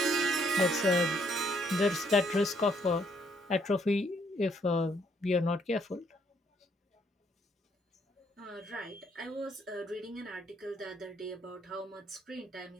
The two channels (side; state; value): both; normal; correlation 0.69